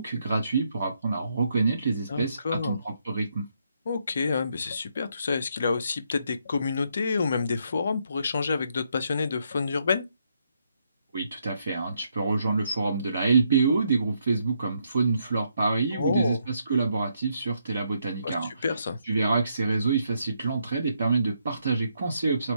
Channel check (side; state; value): both; inverted; correlation -0.76